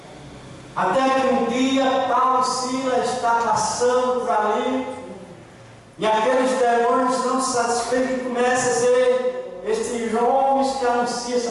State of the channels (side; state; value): both; identical; correlation 1.00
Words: Até que um dia Paulo e Silas está passando por ali, e aqueles demônios não satisfeitos começam a dizer: estes homens que anunciam essa